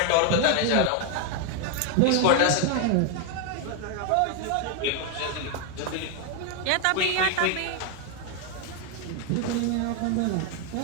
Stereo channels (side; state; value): both; different; correlation 0.01